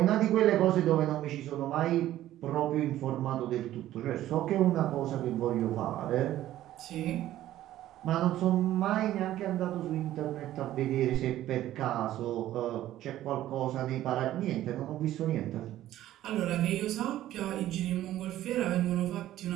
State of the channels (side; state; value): left; quieter; 13.6 dB